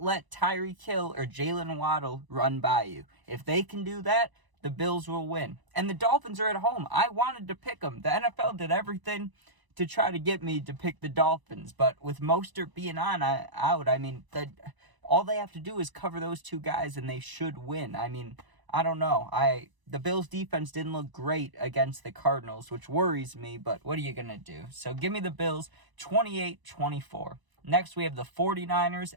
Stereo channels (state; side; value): late; left; 1.0 ms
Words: let Tyreek Hill or Jalen Waddle run by you. If they can do that, the Bills will win. And the Dolphins are at home. I wanted to pick them. The NFL did everything to try to get me to pick the Dolphins, but with Mostert being out, I mean, all they have to do is cover those 2 guys and they should win. I mean, I don't know. The Bills defense didn't look great against the Cardinals, which worries me, but what are you going to do? So give me the Bills 28-24. Next, we have the 49ers